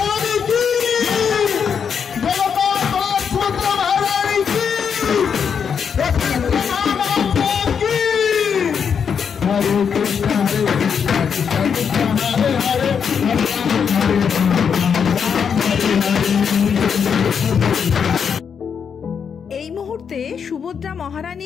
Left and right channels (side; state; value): right; quieter; 6.9 dB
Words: हरे এই মুহূর্তে সুভদ্রা